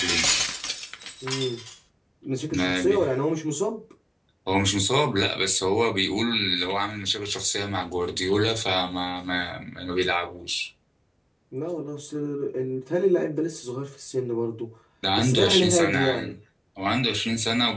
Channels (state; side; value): identical; both; correlation 1.00